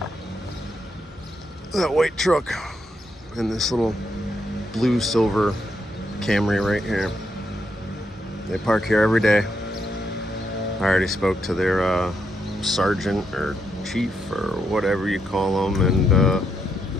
That white truck and this little blue silver Camry right here. They park here every day. I already spoke to their sergeant or chief or whatever you call them, and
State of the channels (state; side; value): normal; both; correlation 0.79